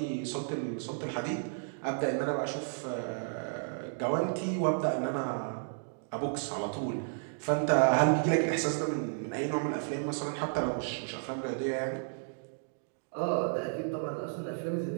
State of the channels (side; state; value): left; silent; digital silence